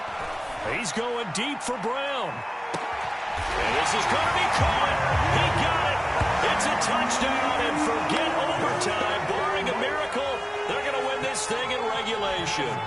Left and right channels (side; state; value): both; identical; correlation 1.00